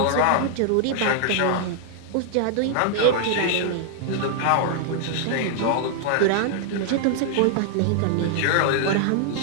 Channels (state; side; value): different; both; correlation -0.01